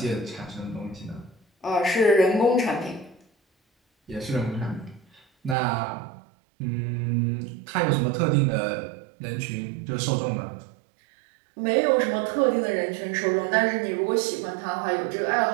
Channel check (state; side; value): drops out; left; at 5.6 s